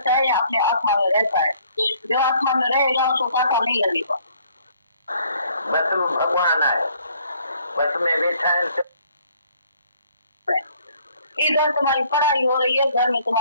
है, या अपने आत्मा में रहता है। जो आत्मा में रहेगा उसको कांटा नहीं लगेगा। बस वो भगवान आए, बस में बैठा है। इधर तुम्हारी पढ़ाई हो रही है, घर में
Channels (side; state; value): both; inverted; correlation -0.61